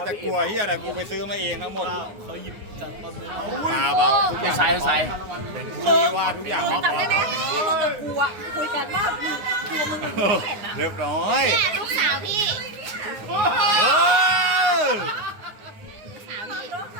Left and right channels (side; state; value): left; late; 9.6 ms